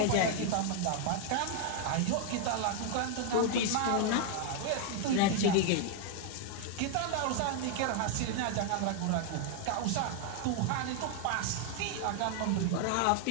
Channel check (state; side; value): different; both; correlation 0.00